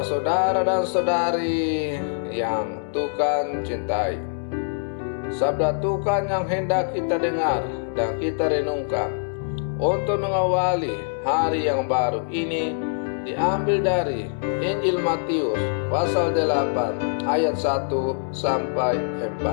saudara dan saudari yang Tuhan cintai, sabda Tuhan yang hendak kita dengar dan kita renungkan untuk mengawali hari yang baru ini diambil dari Injil Matius pasal 8 ayat 1 sampai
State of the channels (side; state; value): right; silent; 63 dB below the other